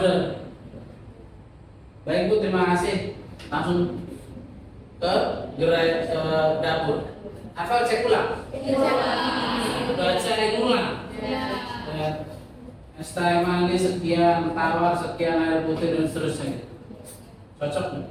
Baik Bu, terima kasih. Langsung ke gerai dapur. Apa cek ulang? Baca ulang. Es teh manis sekian, tawar sekian, air putih dan seterusnya. Cocok?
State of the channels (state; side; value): identical; both; correlation 1.00